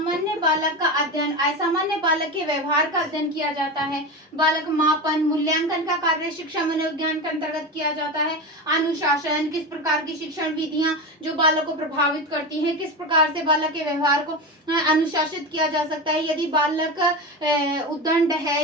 बालक का अध्ययन, असामान्य बालक के व्यवहार का अध्ययन किया जाता है। बालक मापन मूल्यांकन का कार्य शिक्षा मनोविज्ञान के अंतर्गत किया जाता है। अनुशासन, किस प्रकार की शिक्षण विधियां जो बालक को प्रभावित करती हैं, किस प्रकार से बालक के व्यवहार को अनुशासित किया जा सकता है। यदि बालक उद्दंड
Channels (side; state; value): both; normal; correlation 0.21